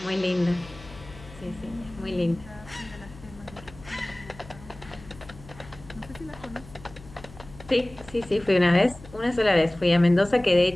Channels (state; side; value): noise; left; hum, 19 dB below the sound